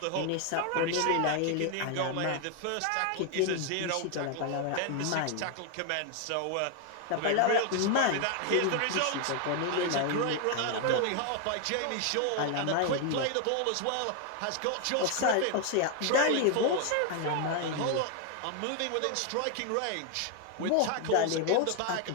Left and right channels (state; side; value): different; both; correlation 0.01